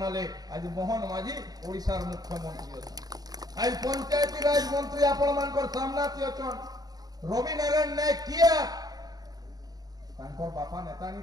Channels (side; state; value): left; late; 0.19 ms